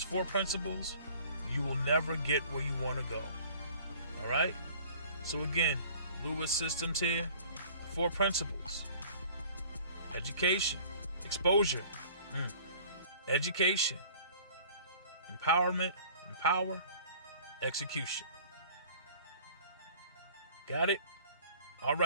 4 principles, you will never get where you want to go. All right? So again, Lewis Systems here, 4 principles. Education, exposure, education, empowerment, empower, execution. Got it? All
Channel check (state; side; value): inverted; both; correlation -0.50